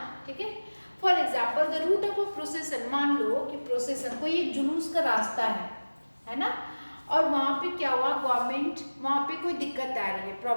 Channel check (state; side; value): inverted; both; correlation -1.00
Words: ठीक है। For example the route of a procession, मान लो कि प्रोसेसन कोई एक जुलूस का रास्ता है ना, और वहाँ पे क्या हुआ, गवर्नमेंट, वहाँ पे कोई दिक्कत आ रही है,